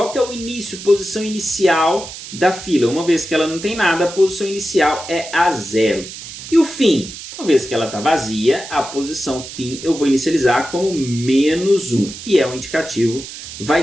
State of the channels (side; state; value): right; noise; hiss, 12 dB below the sound